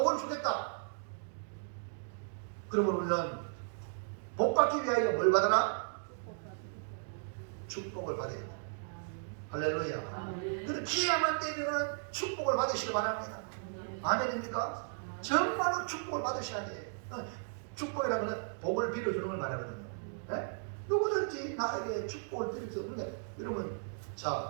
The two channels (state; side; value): silent; left; digital silence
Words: 주겠다. 그러면 우리는 복 받기 위하여 뭘 받아라? 축복을 받아야 돼. 할렐루야. 그래서 기회만 되면은 축복을 받으시기 바랍니다. 아멘입니까? 정말로 축복을 받으셔야 돼요. 축복이라는 것은 복을 빌어주는 걸 말하거든요. 네? 누구든지 나에게 축복을 드릴 수 없는데, 여러분,